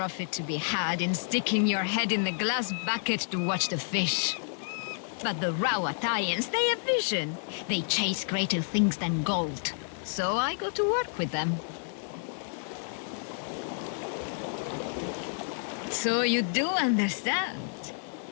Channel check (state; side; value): silent; right; digital silence